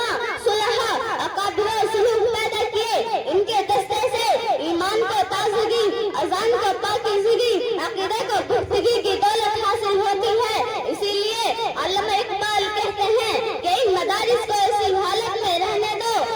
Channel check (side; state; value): both; identical; correlation 1.00